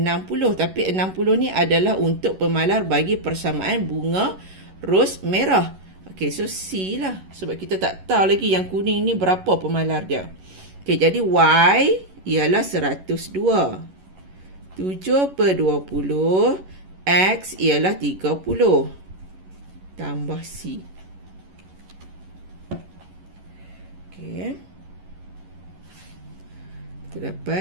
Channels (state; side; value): late; left; 11 ms